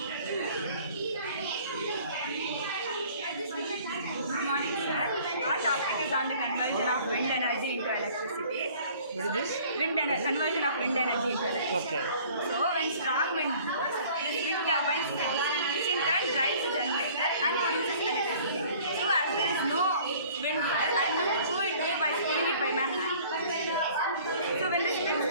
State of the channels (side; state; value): both; inverted; correlation -0.52